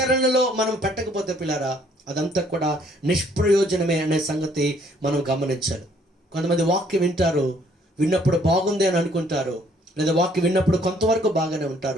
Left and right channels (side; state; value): both; normal; correlation 0.63